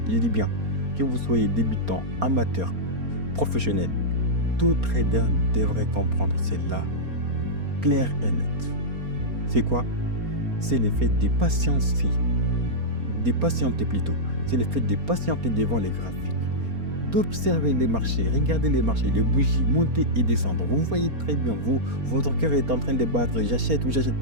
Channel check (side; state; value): left; late; 4.3 ms